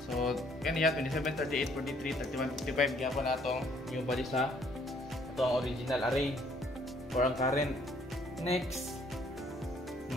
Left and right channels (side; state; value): both; normal; correlation 0.64